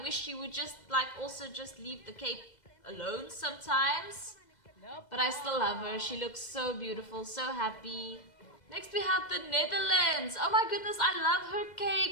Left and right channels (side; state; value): right; late; 2.0 ms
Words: she would just also just leave the cape alone sometimes. But I still love her. She looks so beautiful, so happy. Next we have the Netherlands. Oh my goodness, I love her